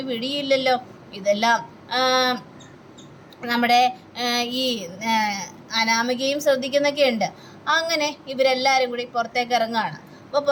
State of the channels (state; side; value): identical; both; correlation 1.00